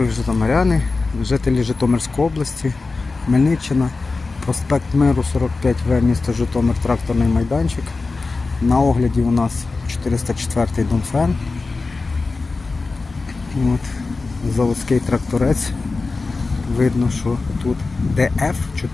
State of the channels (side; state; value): right; quieter; 3.8 dB